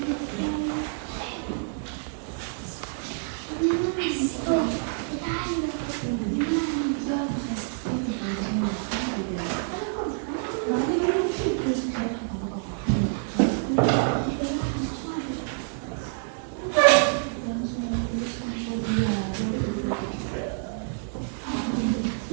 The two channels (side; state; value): left; silent; 60 dB below the other